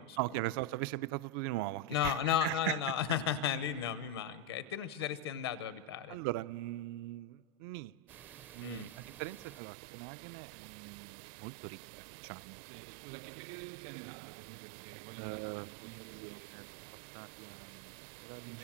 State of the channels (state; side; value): drops out; left; at 9.6 s